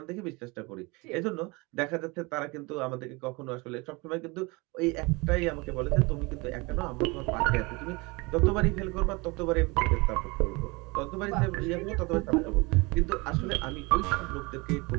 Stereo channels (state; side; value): quieter; left; 26.1 dB